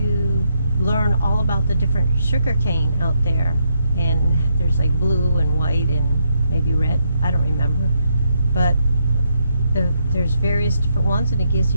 learn all about the different sugar cane out there, and there's like blue and white and maybe red, I don't remember, but there's various different ones, and it gives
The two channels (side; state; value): both; inverted; correlation -0.78